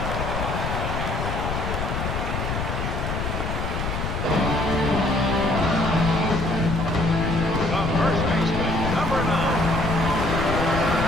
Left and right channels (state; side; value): noise; left; rumble, 3 dB below the sound